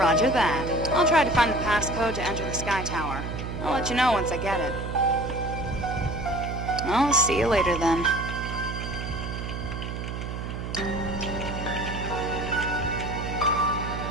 that. I'll try to find the passcode to enter the Sky Tower. I'll let you know once I get it. I'll see you later then.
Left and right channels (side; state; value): right; noise; hum, 6 dB below the sound